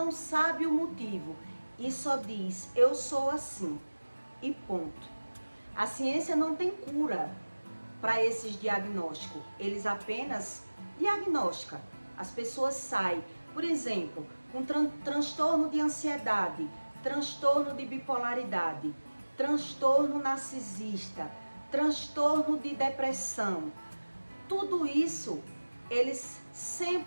sabe o motivo. E só diz, eu sou assim. E ponto. A ciência não tem cura para esses diagnósticos. Eles apenas diagnosticam. As pessoas saem, por exemplo, com transtorno de ansiedade, transtorno de bipolaridade, transtorno narcisista, transtorno de depressão. Tudo isso, eles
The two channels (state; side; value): inverted; both; correlation -1.00